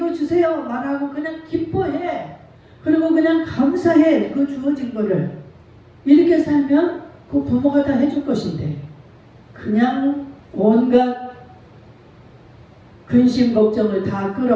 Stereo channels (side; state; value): both; identical; correlation 1.00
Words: 주세요 말하고 그냥 기뻐해. 그리고 그냥 감사해. 그 주어진 거를. 이렇게 살면 그 부모가 다 해줄 것인데 그냥 온갖 근심 걱정을 다